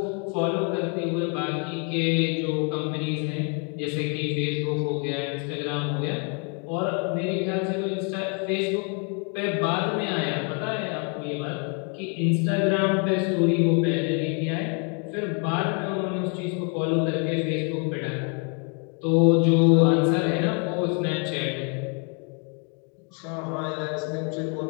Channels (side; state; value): right; quieter; 38.2 dB